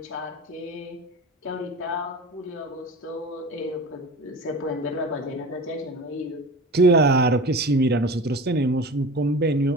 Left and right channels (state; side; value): normal; both; correlation 0.34